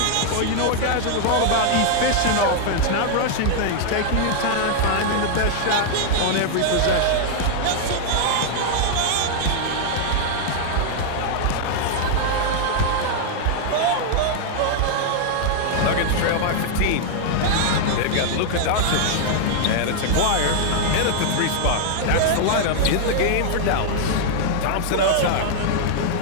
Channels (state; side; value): different; both; correlation 0.00